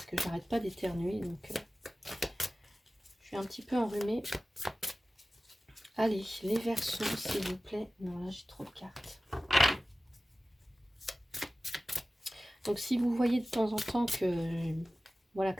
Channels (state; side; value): normal; both; correlation 0.96